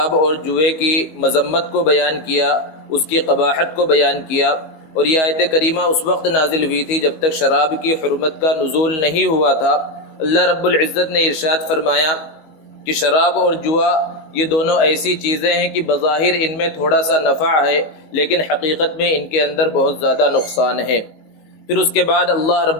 اور جوئے کی مذمت کو بیان کیا، اس کی قباحت کو بیان کیا، اور یہ آیت کریمہ اس وقت نازل ہوئی تھی جب تک شراب کی حرمت کا نزول نہیں ہوا تھا۔ اللہ رب العزت نے ارشاد فرمایا کہ شراب اور جوا یہ دونوں ایسی چیزیں ہیں کہ بظاہر ان میں تھوڑا سا نفع ہے لیکن حقیقت میں ان کے اندر بہت زیادہ نقصان ہے۔ پھر اس کے بعد اللہ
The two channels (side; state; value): right; late; 18 ms